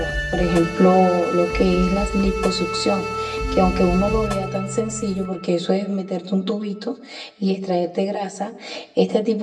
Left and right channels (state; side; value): identical; both; correlation 1.00